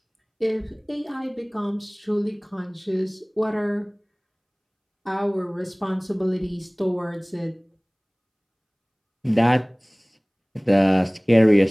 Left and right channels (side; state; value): both; identical; correlation 1.00